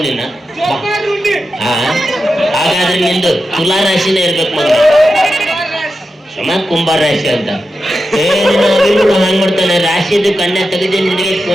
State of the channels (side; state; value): both; normal; correlation 0.90